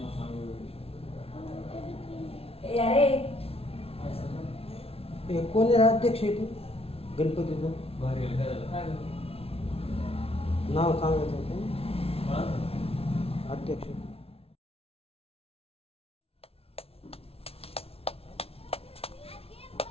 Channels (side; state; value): right; late; 0.28 ms